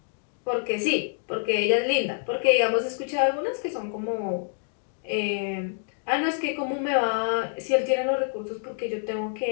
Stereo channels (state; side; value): silent; right; digital silence